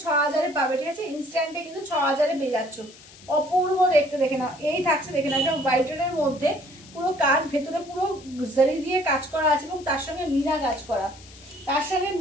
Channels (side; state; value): left; noise; hiss, 21 dB below the sound